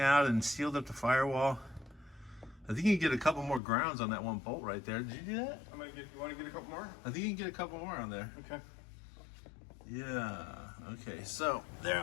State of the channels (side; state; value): right; drops out; at 3.6 s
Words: and sealed up the firewall. I think you can get a couple more grounds on that one bolt right there. Did you do that? I'm gonna get. You want to get a couple more? I think you can get a couple more on there. Okay. Yeah, okay, so there